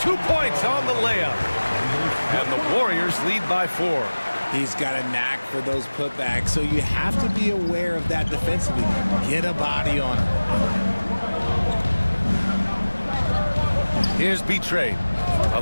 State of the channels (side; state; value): both; inverted; correlation -1.00